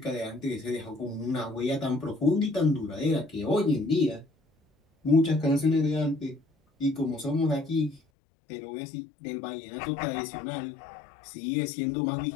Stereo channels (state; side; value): drops out; right; at 8.0 s